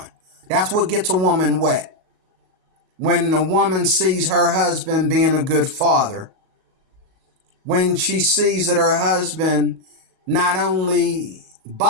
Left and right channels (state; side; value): late; left; 37 ms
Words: That's what gets a woman wet. When a woman sees her husband being a good father, when she sees that her husband not only